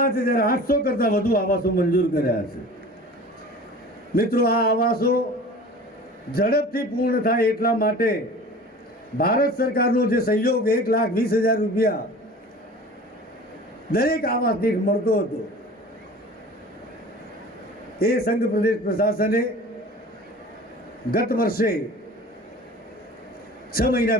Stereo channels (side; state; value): both; normal; correlation 0.41